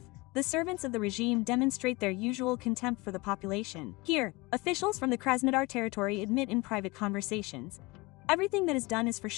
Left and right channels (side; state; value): right; quieter; 23.8 dB